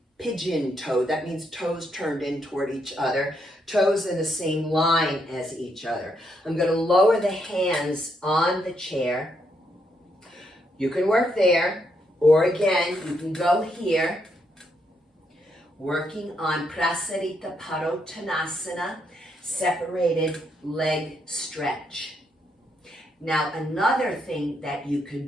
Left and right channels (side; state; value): both; normal; correlation 0.77